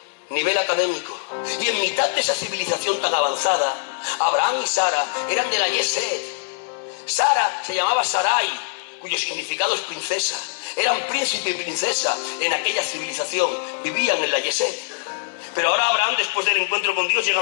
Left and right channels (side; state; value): right; silent; digital silence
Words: nivel académico. Y en mitad de esa civilización tan avanzada, Abraham y Sara eran de la Yesed. Sara se llamaba Sarai, cuyo significado es princesa. Eran príncipe y princesa en aquella civilización, vivían en la Yesed. Pero ahora Abraham, después del encuentro con Dios, llega